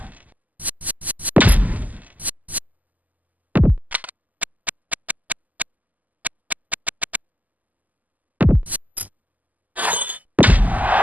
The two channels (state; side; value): late; left; 0.079 ms